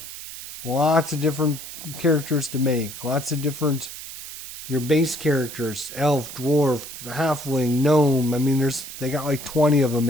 lots of different characters to make. Lots of different, your base characters, elf, dwarf, halfling, gnome. I mean, they got like 20 of them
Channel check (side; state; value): right; noise; hiss, 11 dB below the sound